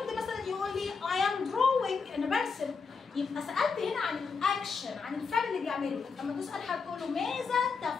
مثلا يقول لي I am drawing، انا برسم. يبقى سالت هنا عن الاكشن، عن الفعل اللي بيعمله. لما تسال حد تقول له ماذا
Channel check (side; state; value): right; quieter; 5.1 dB